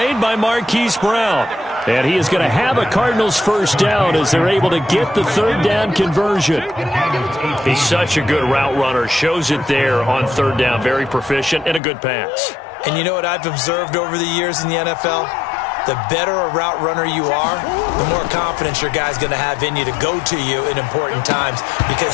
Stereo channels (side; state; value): right; drops out; at 11.8 s